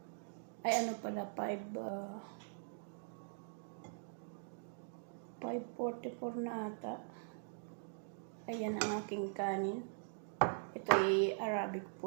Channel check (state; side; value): silent; left; digital silence